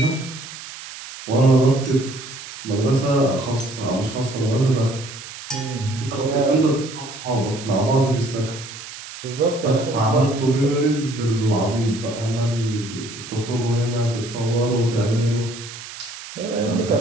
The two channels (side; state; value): right; noise; hiss, 13 dB below the sound